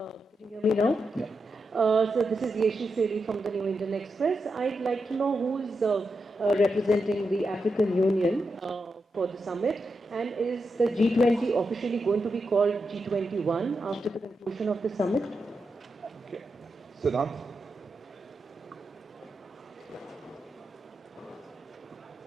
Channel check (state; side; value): normal; both; correlation 0.86